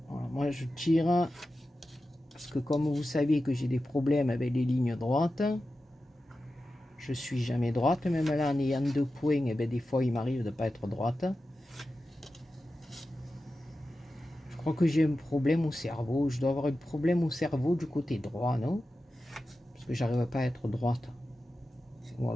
Voilà, moi, je tire parce que comme vous savez que j'ai des problèmes avec les lignes droites, je suis jamais droite. Même là, en ayant 2 points, et bien, des fois, il m'arrive de ne pas être droite. Je crois que j'ai un problème au cerveau. Je dois avoir un problème au cerveau du côté droit, non? Parce que j'arrive pas à être droite. Ou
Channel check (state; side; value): normal; both; correlation 0.93